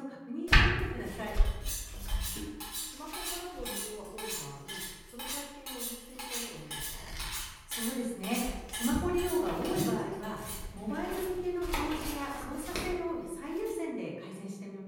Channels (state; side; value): identical; both; correlation 1.00